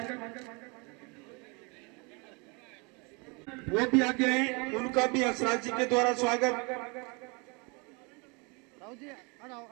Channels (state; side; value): quieter; left; 30.4 dB